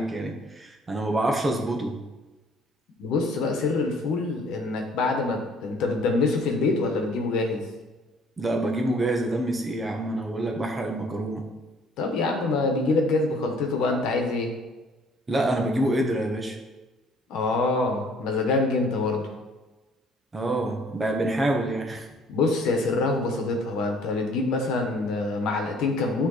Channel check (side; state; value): both; normal; correlation 0.57